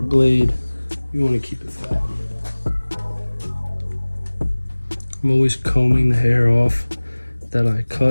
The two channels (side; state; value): both; inverted; correlation -1.00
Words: blade, you want to keep it flat. I'm always combing the hair off that I